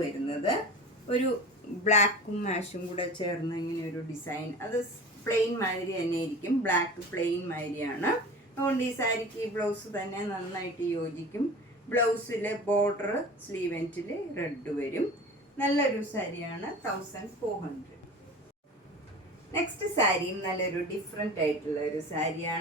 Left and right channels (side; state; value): both; normal; correlation 0.36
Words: വരുന്നത് ഒരു ബ്ലാക്കും മാഷും കൂടെ ചേർന്ന് ഇങ്ങനെ ഒരു ഡിസൈൻ. അത് പ്ലെയിൻ മാതിരി തന്നെ ഇരിക്കും. ബ്ലാക്ക് പ്ലെയിൻ മാതിരിയാണ്. അതുകൊണ്ട് ഈ സാരിക്ക് ഈ ബ്ലൗസ് തന്നെ നന്നായിട്ട് യോജിക്കും. ബ്ലൗസിൽ ബോർഡർ സ്ലീവ് എൻഡിൽ റെഡ് വരും. നല്ലൊരു സാരിയാണ്. 1400. നെക്സ്റ്റ് സാരിയും നല്ലൊരു ഡിഫറെൻ്റ് ആയിട്ടുള്ള ഒരു